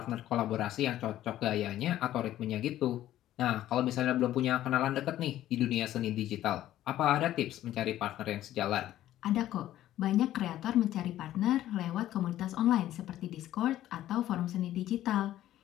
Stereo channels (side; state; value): right; quieter; 13.3 dB